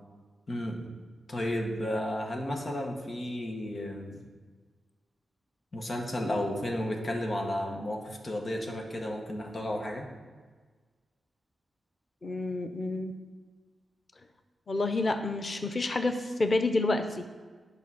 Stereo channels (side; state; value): both; normal; correlation 0.88